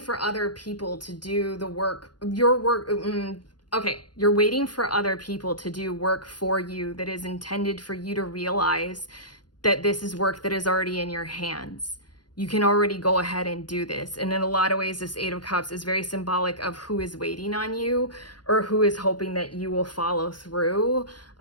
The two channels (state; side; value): late; right; 0.70 ms